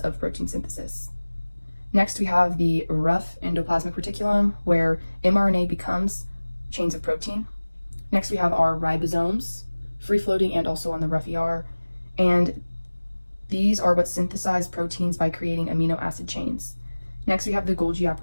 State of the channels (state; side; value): inverted; both; correlation -1.00